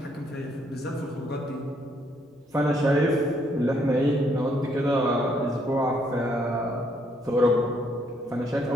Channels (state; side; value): normal; both; correlation 0.70